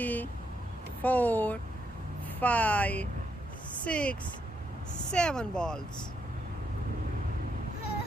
four, five, 6, 7 balls.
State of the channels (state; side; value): normal; both; correlation 0.78